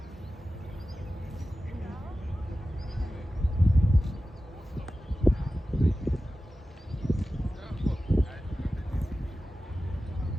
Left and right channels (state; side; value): normal; both; correlation 0.94